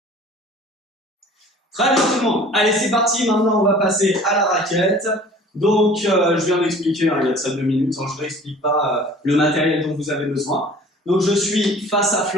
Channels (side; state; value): both; normal; correlation 0.47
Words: Très bien tout le monde. Allez, c'est parti. Maintenant, on va passer à la raquette. Donc, je viens d'expliquer, hein, il y a de ça 2 minutes. Hein, je ne réexplique pas le matériel dont vous avez besoin. Donc, je suis face à